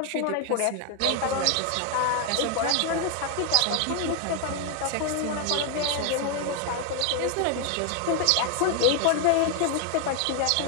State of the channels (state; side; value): different; both; correlation 0.00